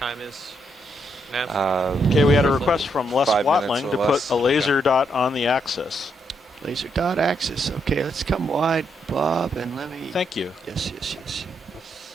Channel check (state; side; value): normal; both; correlation 0.77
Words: is, Nav? Okay, we had a request from Les 5 minutes Watling or to less. put a laser dot on the axis. Laser dot axis. Okay, let's come wide, Bob, and let me. Thank you. Yes.